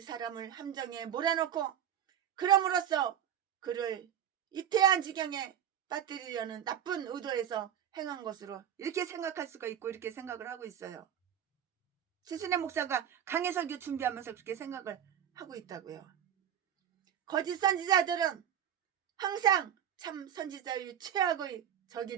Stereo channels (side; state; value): left; quieter; 9.8 dB